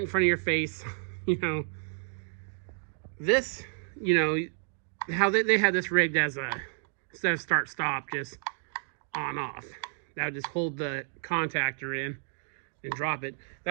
in front of your face. This, how they had this rigged as instead of start stop, just on off. That would just hold the contactor in and drop it.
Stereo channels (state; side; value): silent; left; 57 dB below the other